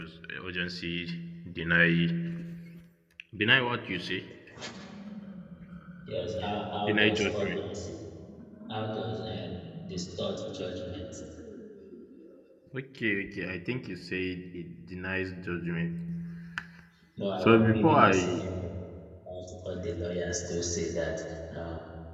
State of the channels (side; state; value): both; identical; correlation 1.00